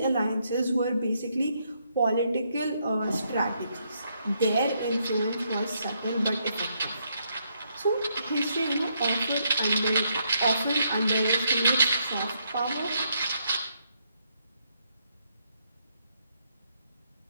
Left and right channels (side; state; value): both; inverted; correlation -0.76